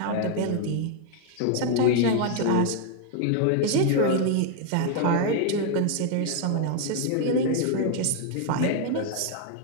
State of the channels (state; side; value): different; both; correlation 0.01